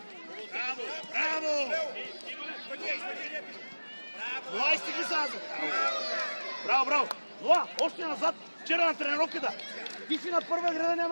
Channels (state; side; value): inverted; both; correlation -1.00